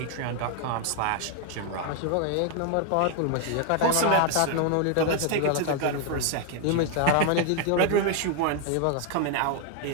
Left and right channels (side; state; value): both; different; correlation 0.00